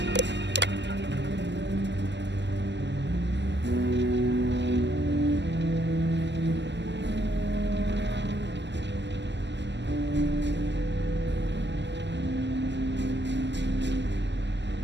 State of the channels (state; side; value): late; left; 0.51 ms